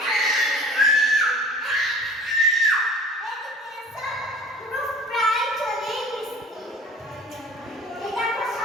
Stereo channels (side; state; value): both; normal; correlation 0.46